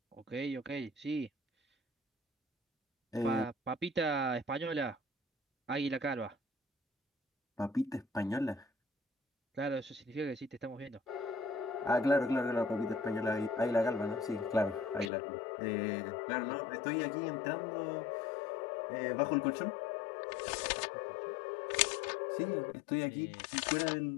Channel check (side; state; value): right; drops out; at 15.1 s